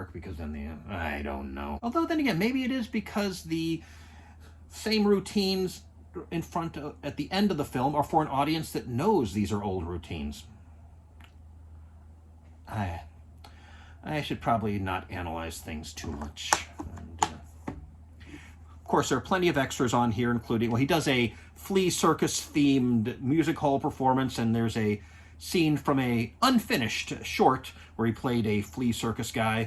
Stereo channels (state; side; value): identical; both; correlation 1.00